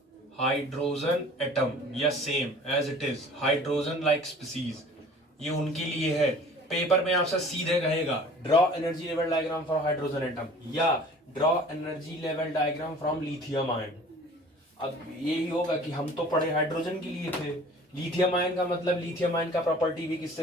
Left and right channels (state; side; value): normal; both; correlation 0.47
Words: हाइड्रोजन एटम, या same as it is hydrogen like species, ये उनके लिए है। पेपर में आपसे सीधे कहेगा draw energy level diagram for hydrogen atom या draw energy level diagram from lithium ion. अब यही होगा कि हम तो पढ़े हाइड्रोजन के लिए थे, लिथियम आयन का मतलब लिथियम आयन का प्रॉपर्टी भी किससे